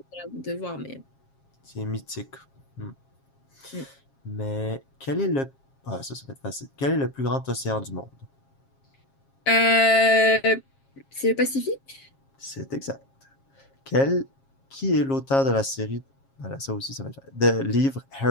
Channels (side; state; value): right; late; 7.4 ms